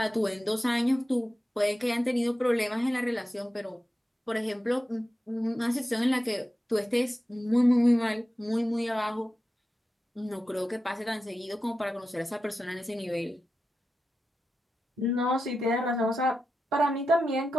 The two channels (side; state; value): both; normal; correlation 0.91